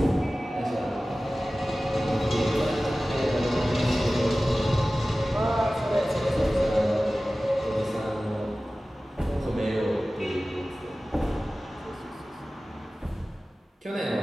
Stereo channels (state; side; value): normal; both; correlation 0.96